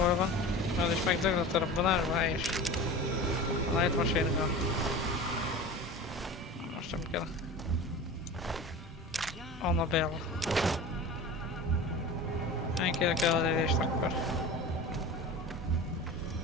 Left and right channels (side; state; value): both; normal; correlation 0.34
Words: van? Az is megdöglött a robbanásba, helyes. A light machine gun. Most nem kell. Annabelle. Ennyire kell az élést akkor.